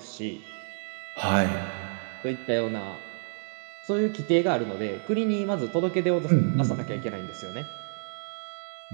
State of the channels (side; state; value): left; silent; digital silence